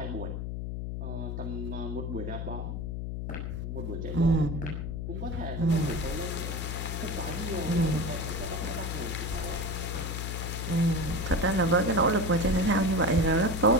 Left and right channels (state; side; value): noise; left; hum, 4 dB below the sound